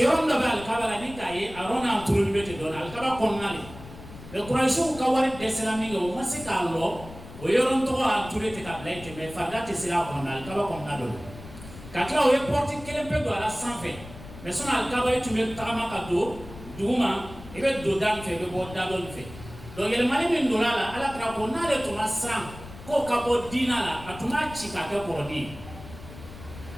ronda ba al kabala ni kaye arona turu bete don al kaba konnale le quraishu ka wari de salami o masikallo o yoron to a turete ka blaite me fagate sila ko na alkaba ko na do kakla o ye porti kelempe do ala sanfe me sona alkaba e tume tagama ka do duma e be do dan fe be bo dalon fe do yele mani min do ala ala tra ko na le to masram ko ka bo dinala atuma chika ke korodi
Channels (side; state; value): left; noise; rumble, 15 dB below the sound